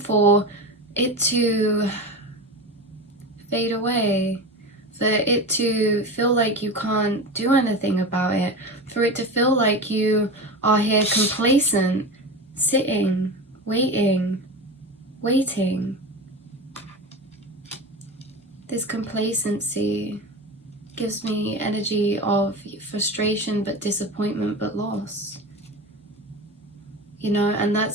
it to fade away? for it to feel like you can't do anything about it, for it to feel like you are here complacent, sitting, waiting. This complacency gives me energy of frustration, but disappointment, but loss. You know, and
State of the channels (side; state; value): both; normal; correlation 0.26